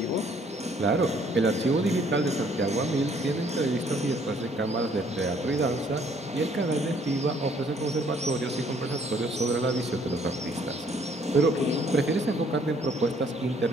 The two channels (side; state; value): both; normal; correlation 0.62